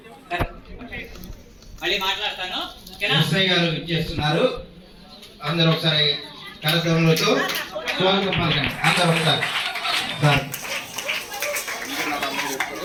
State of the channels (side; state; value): both; identical; correlation 1.00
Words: మళ్ళీ మాట్లాడతాను. ఎస్ఐ గారు ఇచ్చేస్తున్నారు. అందరూ ఒకసారి కార్యక్రమంలో స్వాగతం పలకండి. అందరూ ఒకసారి సార్